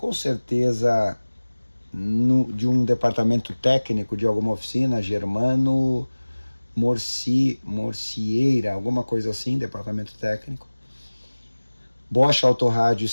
certeza de um departamento técnico de alguma oficina, Germano Morcieira, alguma coisa assim, departamento técnico. Bosch Autorádio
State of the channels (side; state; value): both; inverted; correlation -1.00